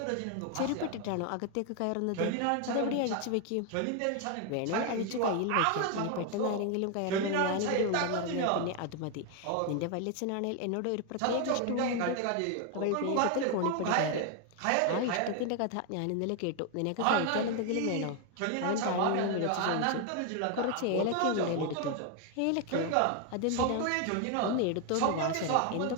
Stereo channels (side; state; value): both; different; correlation 0.01